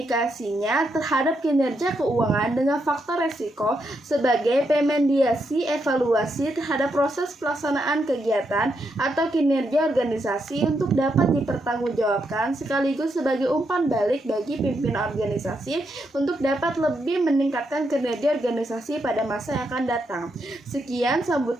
terhadap kinerja keuangan dengan faktor resiko sebagai pemediasi evaluasi terhadap proses pelaksanaan kegiatan atau kinerja organisasi untuk dapat dipertanggungjawabkan, sekaligus sebagai umpan balik bagi pimpinan organisasi untuk dapat lebih meningkatkan kinerja organisasi pada masa yang akan datang. Sekian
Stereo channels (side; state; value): both; normal; correlation 0.80